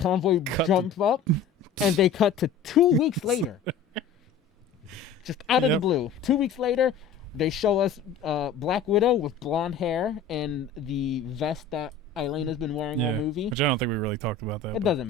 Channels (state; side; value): quieter; right; 5.4 dB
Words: jump up, and they cut to 2 weeks later. Just out of the blue. 2 weeks later, they show us Black Widow with blonde hair and the vest that Elena's been wearing all movie. Which I don't think we really talked about that. It doesn't